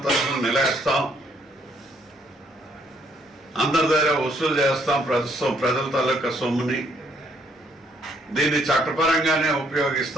తరఫున నిలేస్తాం, అందరి దగ్గర వసూలు చేస్తాం. ప్రజల తాలూకా సొమ్ముని దీన్ని చట్టపరంగానే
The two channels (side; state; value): both; normal; correlation 0.68